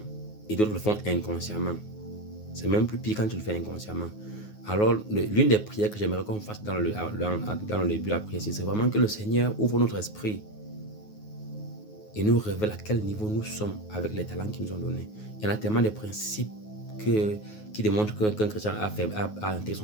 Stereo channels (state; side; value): late; right; 9.4 ms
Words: et d'autres le font inconsciemment. C'est même plus pire quand tu le fais inconsciemment. Alors, l'une des prières que j'aimerais qu'on fasse dans le début de la prière, c'est vraiment que le Seigneur ouvre notre esprit et nous révèle à quel niveau nous sommes avec les talents qu'il nous ont donnés. Il y en a tellement de principes qui démontrent qu'un chrétien a intégré